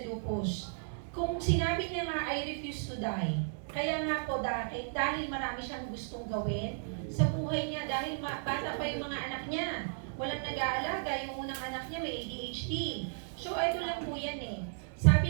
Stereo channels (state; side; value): silent; left; digital silence